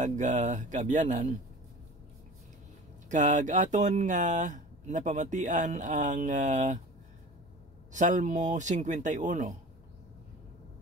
kaabyanan kag aton nga napamatian ang Salmo 51.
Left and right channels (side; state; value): both; normal; correlation 0.38